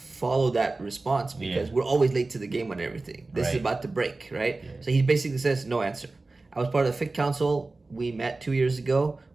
that response because we're always late to the game on everything. This is about to break, right? Yeah. So he basically says, no answer. I was part of the Fiqh Council. We met 2 years ago.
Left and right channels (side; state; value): left; quieter; 3.4 dB